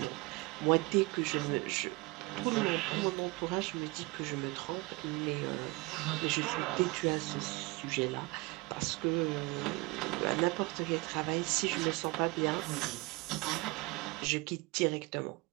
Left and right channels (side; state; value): left; quieter; 24.4 dB